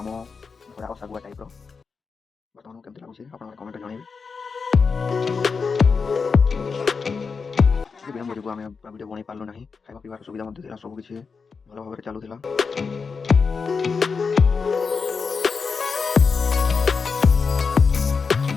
आम थोड़ा सागुआ टाइप बर्तमान केमती लगुच आप कमेंट जनइबे। विलम्ब जो आम वीडियो बन पार्लु ना खावा पीवार सुविधा सबकि भल भाव चलूला।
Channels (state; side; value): quieter; right; 5.2 dB